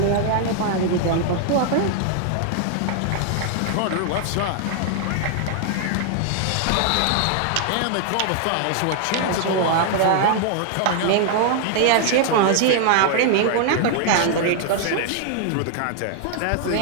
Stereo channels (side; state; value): both; different; correlation 0.00